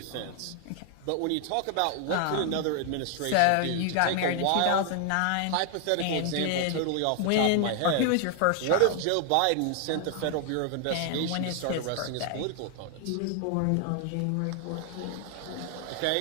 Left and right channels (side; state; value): both; different; correlation 0.00